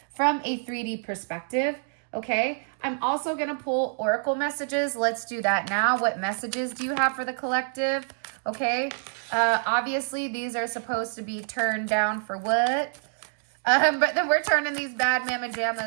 from a 3D perspective? Okay, I'm also going to pull oracle messages. Let's do that now. What messages do you have for the collective? Okay, obviously these are supposed to be turned down for what? But then we're turning these bad mama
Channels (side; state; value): left; silent; 60 dB below the other